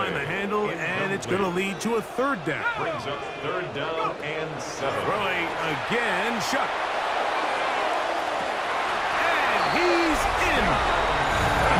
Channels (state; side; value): identical; both; correlation 1.00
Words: the handle, and it's going to lead to a 3rd down. Brings up 3rd down and 7. Throwing again, Chuck. And he's in.